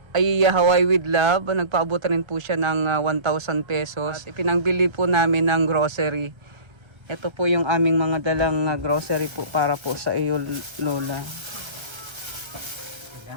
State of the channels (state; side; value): late; left; 1.3 ms